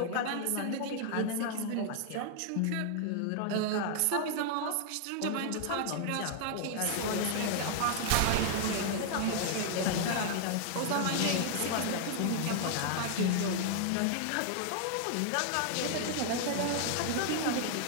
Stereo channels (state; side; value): different; both; correlation 0.00